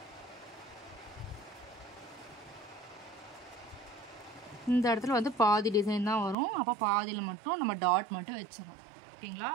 இந்த இடத்துல வந்து பாதி டிசைன் தான் வரும். அப்போ பாதியில் மட்டும் நம்ம டாட் மட்டும் வச்சிடறோம். ஓகேங்களா?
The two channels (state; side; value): drops out; left; at 6.4 s